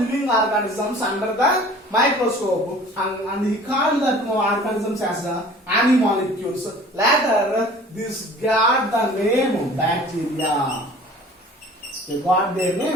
organisms under the microscope, and he called that organisms as animalcules. Later, this got the name bacteria. They got their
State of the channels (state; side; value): normal; both; correlation 0.46